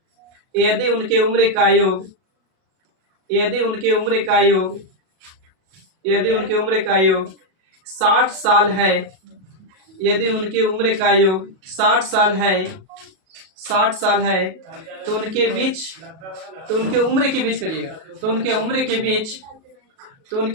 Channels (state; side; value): late; left; 37 ms